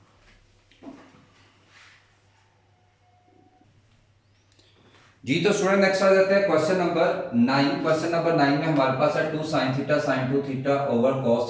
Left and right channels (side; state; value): both; identical; correlation 1.00